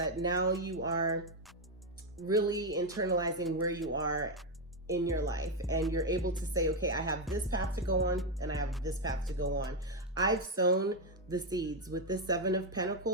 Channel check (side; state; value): both; normal; correlation 0.05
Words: now you are really internalizing where you are in your life, and you're able to say, okay, I have this path to go on and I have this path to go on. I've sown the seeds. With this Seven of